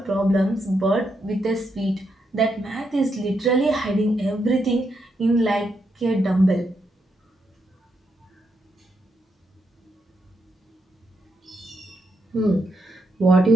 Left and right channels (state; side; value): normal; both; correlation 0.81